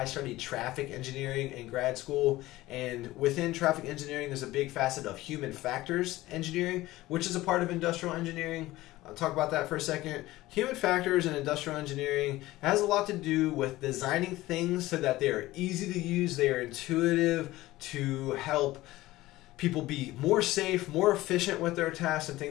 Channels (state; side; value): quieter; right; 17.5 dB